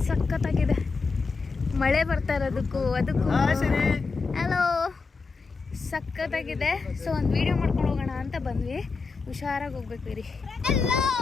ಸಖತ್ತಾಗಿದೆ. ಮಳೆ ಬರ್ತಾ ಇರೋದಕ್ಕೂ ಅದಕ್ಕೂ ಹಲೋ ಸಖತ್ತಾಗಿದೆ. ಸೊ ಒಂದು ವಿಡಿಯೋ ಮಾಡ್ಕೊಂಡು ಹೋಗೋಣ ಅಂತ ಬಂದ್ವಿ. ಹುಷಾರಾಗಿ ಹೋಗ್ಬೇಕು ರೀ.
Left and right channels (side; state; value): right; quieter; 4.4 dB